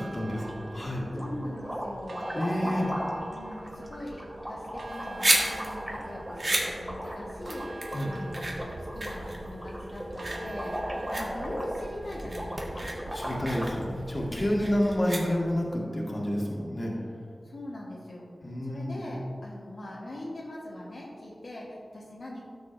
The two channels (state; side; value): normal; both; correlation 0.97